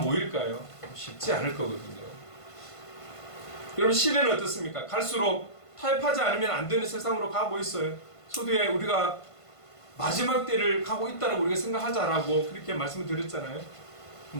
쉽지 않을 거거든요. 여러분, 시대는 어떻습니까? 갈수록 타협하지 않으면 안 되는 세상으로 가고 있어요. 소두에 우리가 마지막 때를 가고 있다고 우리가 생각하자라고 그렇게 말씀을 드렸잖아요.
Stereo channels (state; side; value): late; right; 1.5 ms